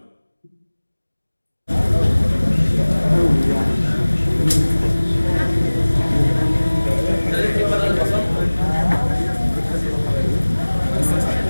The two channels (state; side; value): inverted; both; correlation -1.00